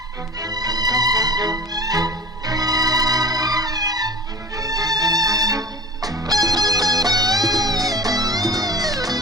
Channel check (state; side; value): normal; both; correlation 0.37